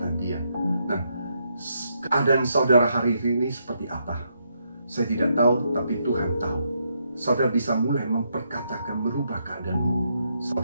dia. Nah, keadaan saudara hari ini seperti apa? Saya tidak tahu, tapi Tuhan tahu. Saudara bisa mulai memperkatakan, merubah keadaanmu.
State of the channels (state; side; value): inverted; both; correlation -0.78